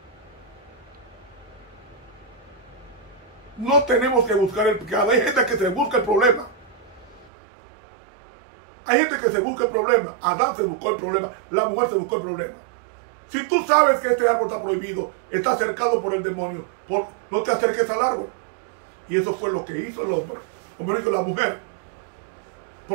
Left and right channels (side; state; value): left; drops out; at 7.3 s